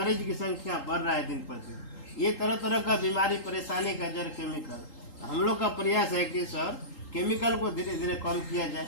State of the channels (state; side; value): late; right; 3.8 ms